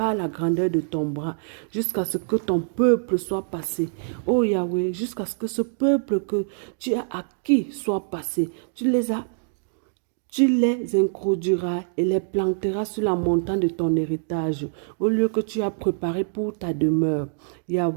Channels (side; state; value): left; silent; digital silence